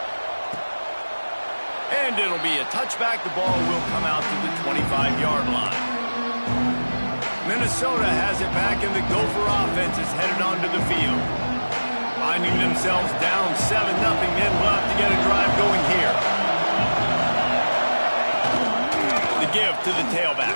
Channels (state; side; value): inverted; both; correlation -1.00